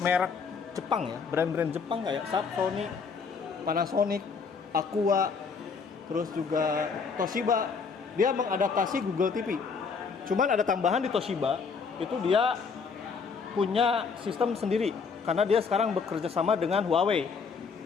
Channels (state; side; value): quieter; right; 5.4 dB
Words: merek Jepang ya, brand-brand Jepang kayak Sony, Panasonic, Aqua, terus juga Toshiba, dia mengadaptasi Google TV. Cuman ada tambahan di Toshiba, itu dia punya sistem sendiri karena dia sekarang bekerja sama dengan Huawei.